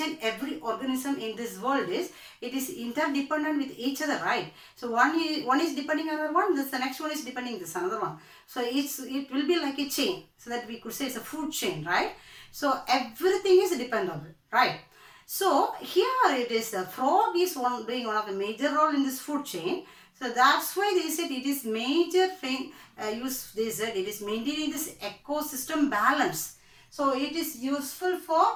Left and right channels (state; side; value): identical; both; correlation 1.00